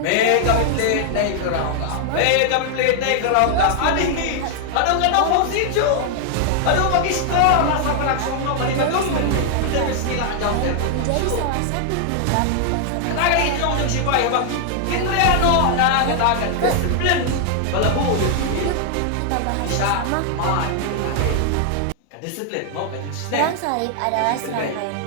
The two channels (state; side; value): different; both; correlation 0.00